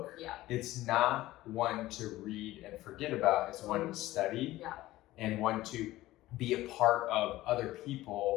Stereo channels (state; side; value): quieter; right; 16.6 dB